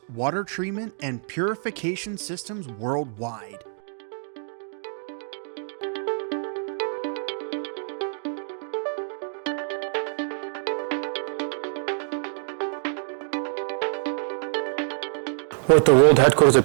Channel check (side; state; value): left; silent; digital silence